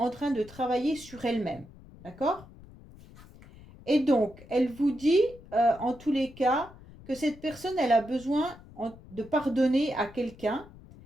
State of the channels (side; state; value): left; noise; rumble, 20 dB below the sound